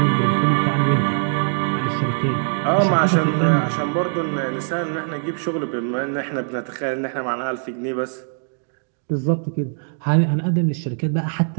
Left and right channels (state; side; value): silent; left; 64 dB below the other